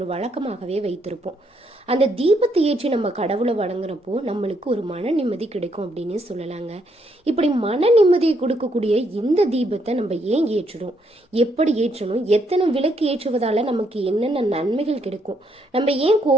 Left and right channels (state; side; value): normal; both; correlation 0.74